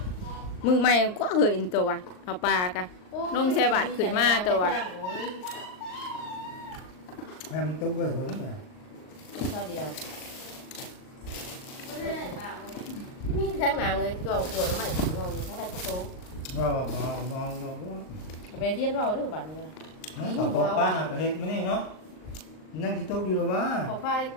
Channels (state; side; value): late; right; 38 ms